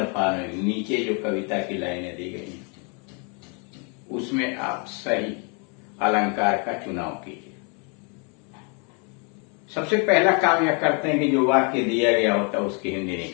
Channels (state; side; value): quieter; right; 35.3 dB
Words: following. नीचे जो कविता की लाइनें दी गई हैं उसमें आप सही अलंकार का चुनाव कीजिए। सबसे पहला काम यह करते हैं कि जो वाक्य दिया गया होता है उसकी हिंदी